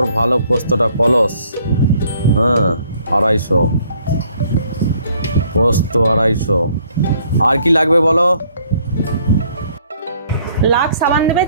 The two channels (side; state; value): both; inverted; correlation -0.63